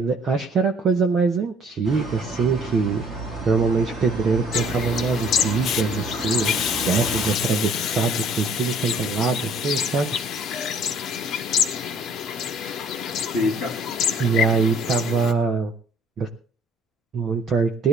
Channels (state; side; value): normal; both; correlation 0.57